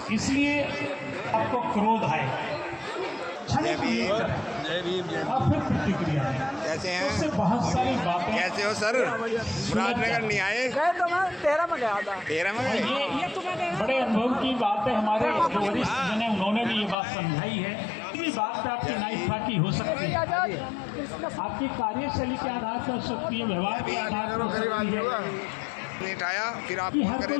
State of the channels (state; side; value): drops out; right; at 16.9 s